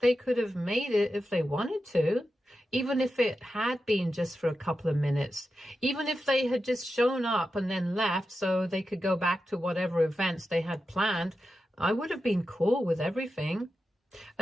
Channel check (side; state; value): both; normal; correlation 0.90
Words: could have made it if they wanted to. Even if it had been just for a couple of minutes, even if they had just shown up and then left so they could go back to whatever events they had planned, I would have been cool with everything.